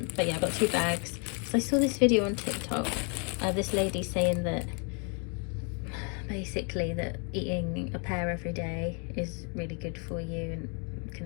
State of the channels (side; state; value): right; quieter; 37.3 dB